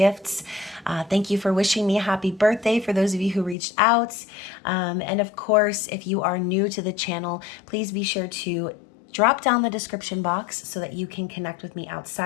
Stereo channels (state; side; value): drops out; right; at 3.6 s